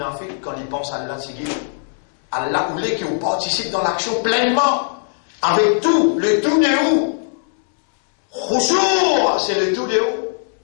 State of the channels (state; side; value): silent; right; 65 dB below the other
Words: quand ils pensent à Allah, c'est Allah voulait qu'ils participent dans l'action pleinement, avec tout, le tout de où. Khushu', c'est le tout de où.